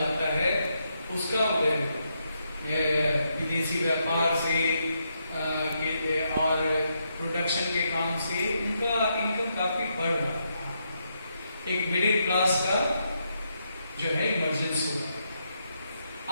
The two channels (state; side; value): inverted; both; correlation -0.80